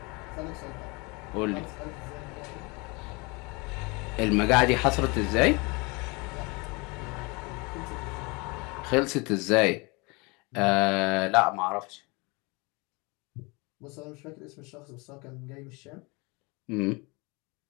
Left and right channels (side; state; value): right; quieter; 27.6 dB